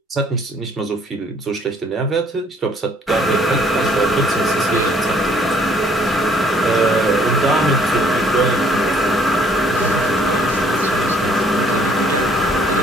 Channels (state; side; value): normal; both; correlation 0.62